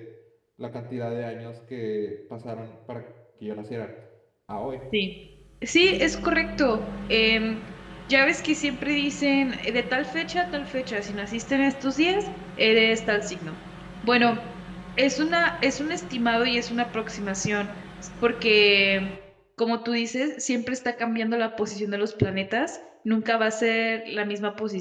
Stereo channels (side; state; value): both; identical; correlation 1.00